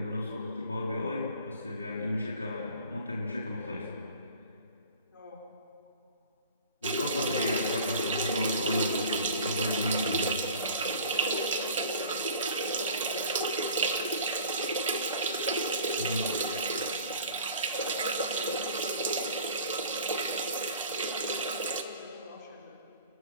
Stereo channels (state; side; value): inverted; both; correlation -0.44